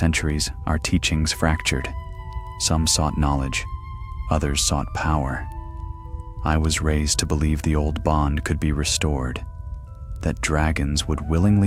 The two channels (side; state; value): both; identical; correlation 1.00